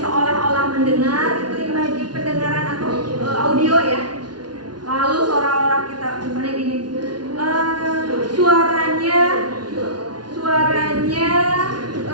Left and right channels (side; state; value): left; late; 0.70 ms